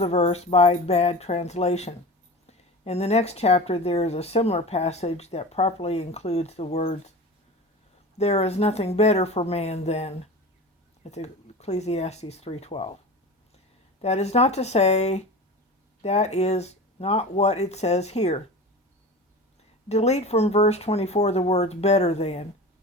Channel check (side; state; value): both; normal; correlation 0.32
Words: verse by bad translation. In the next chapter, there is a similar passage that properly includes the words, "There is nothing better for man than." It's Ecclesiastes 3:12. That is not to say that is not what it says here. Delete from verse 24 the words "better than,"